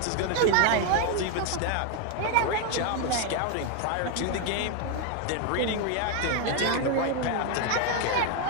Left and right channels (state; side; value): different; both; correlation 0.01